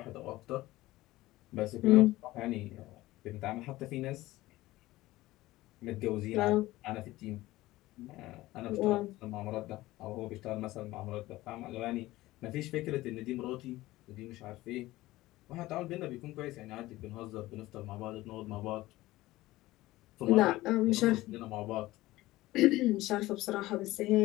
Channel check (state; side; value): quieter; right; 17.7 dB